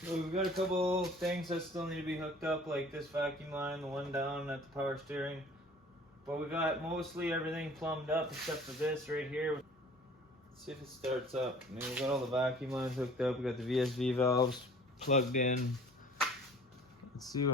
We've got a couple things that still need to be hooked up, like this vacuum line, the one down at the power steering. But we got mostly everything plumbed up except for this right here. Let's see if it starts up. I mean, we got all the vacuum lines hooked up. We got the VSV valves plugged in. Let's see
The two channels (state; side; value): normal; both; correlation 0.49